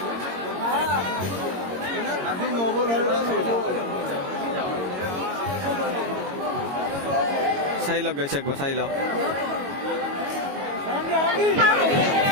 চাই লওক গাইছে একবার চাই লওক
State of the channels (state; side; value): late; left; 22 ms